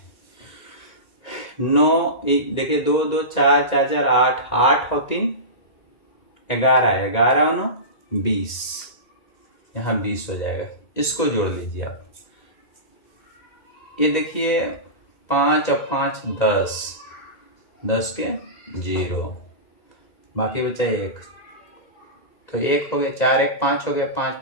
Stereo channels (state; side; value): late; right; 2.0 ms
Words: 9, देखिए 2 2 4 4 4 8, 8 और 3 11, 11 और 9 20, यहाँ 20 हो जाएगा। इसको जोड़ लीजिए आप। ये देखिए 5 और 5 10, 10 के 0, बाकी बचा 1, तो 1 हो गया, 4 1 5 हो गया, 5